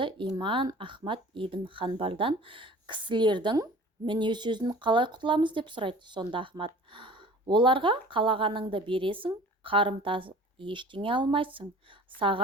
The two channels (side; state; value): both; normal; correlation 0.44